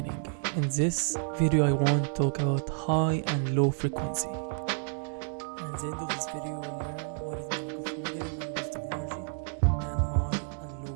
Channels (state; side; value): silent; left; 58 dB below the other